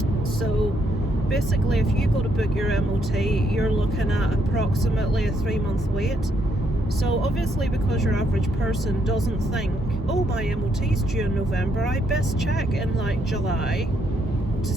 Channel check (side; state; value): both; normal; correlation 0.74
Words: So basically, if you go to book your MOT, you're looking at approximately a 3-month wait. So obviously, because your average person doesn't think, oh, my MOT's due in November, I best check in like July to